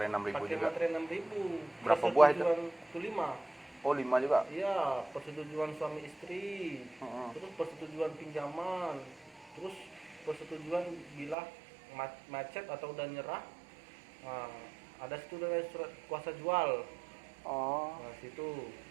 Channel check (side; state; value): left; drops out; at 11.4 s